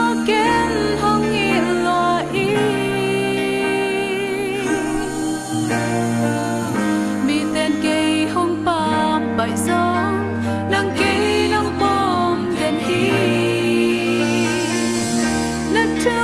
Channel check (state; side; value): identical; both; correlation 1.00